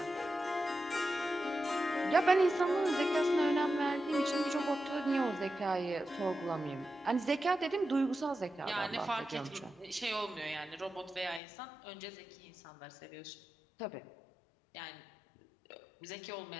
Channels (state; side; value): drops out; right; at 11.4 s